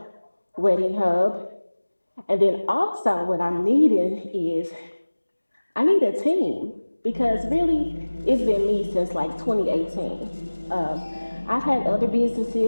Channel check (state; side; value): inverted; both; correlation -1.00